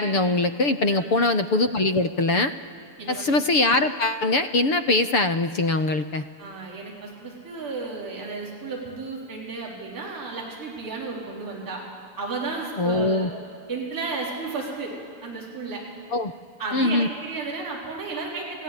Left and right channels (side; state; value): right; late; 6.9 ms